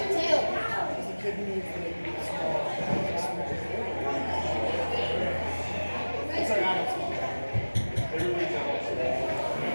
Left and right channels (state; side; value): inverted; both; correlation -1.00